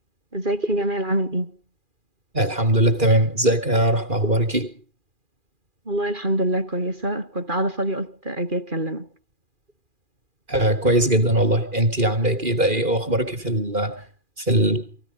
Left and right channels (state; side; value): late; left; 2.4 ms